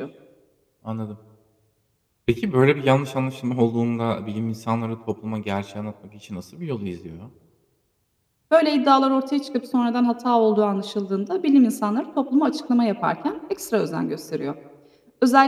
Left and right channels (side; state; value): both; identical; correlation 1.00